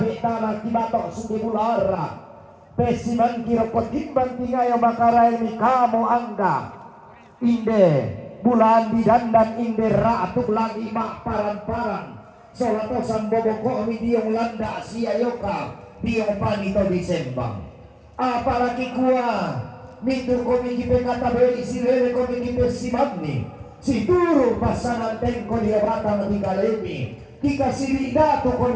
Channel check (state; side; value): identical; both; correlation 1.00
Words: tanah kibatok suki bulara pesiman kirokot timbang tingayo makarael mi kamu angga inde bulan di dandan inde ratuk lagi mak paran-paran solatosan boboko mi diong landa siayoka diong panito disembang apalagi kuah mintur komiki pekatabi sirene komiki pesimagni si turu pasangan tengko dia batang tiga lemi kika siri datu